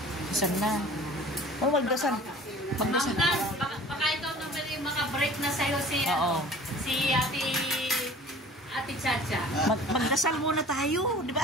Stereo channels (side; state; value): both; normal; correlation 0.46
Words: Isan na. Oh, magdasan. Magdasan. Baka ikaw naman yung maka-break na sa'yo si Ate Chacha. Magdasal muna tayo, di ba?